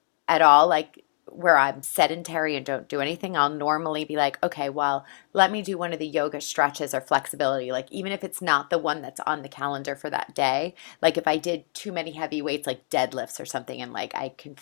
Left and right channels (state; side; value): silent; right; digital silence